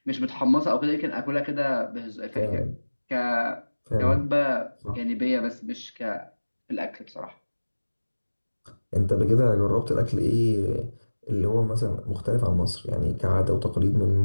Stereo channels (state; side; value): inverted; both; correlation -1.00